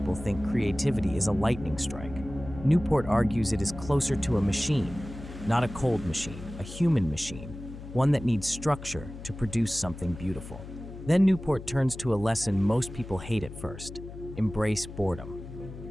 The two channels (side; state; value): left; noise; hum, 13 dB below the sound